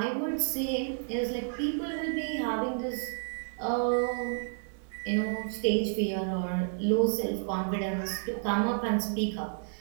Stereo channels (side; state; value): left; silent; digital silence